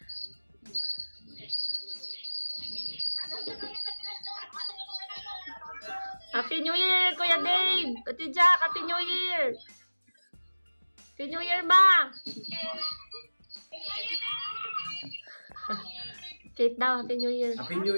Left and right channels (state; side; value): inverted; both; correlation -1.00